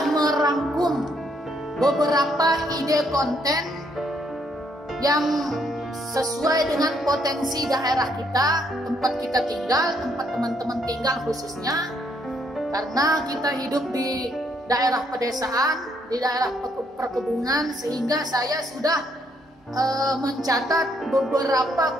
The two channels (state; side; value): normal; both; correlation 0.71